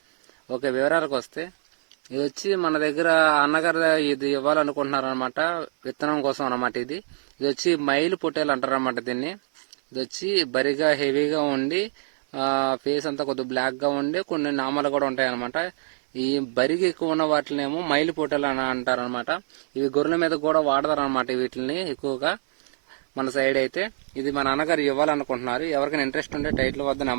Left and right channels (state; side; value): silent; left; digital silence